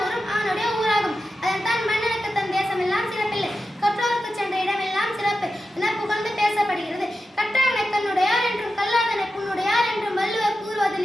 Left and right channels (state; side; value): normal; both; correlation 0.91